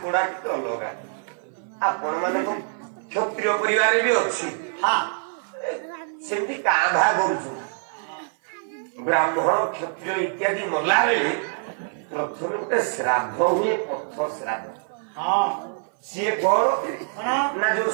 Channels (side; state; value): left; silent; 58 dB below the other